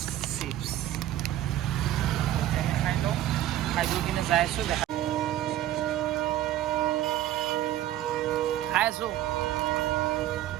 চিপছ। এতিয়া আমি খাই লওঁ, খাই বৈ কিনে যাই আছোঁ, দেখা খাই আছোঁ।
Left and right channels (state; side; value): quieter; left; 13.1 dB